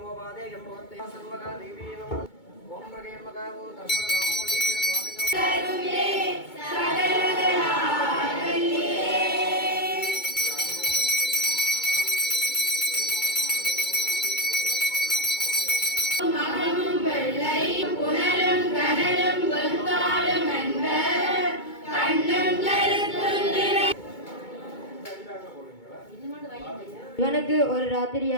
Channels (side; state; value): right; late; 2.2 ms